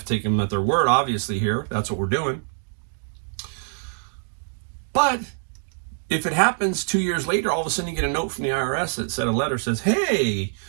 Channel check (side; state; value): left; silent; digital silence